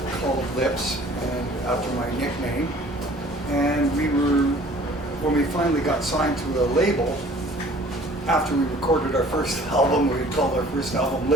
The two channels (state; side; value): normal; both; correlation 0.51